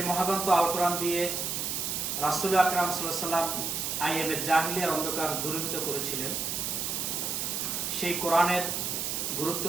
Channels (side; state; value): right; noise; hiss, 1 dB below the sound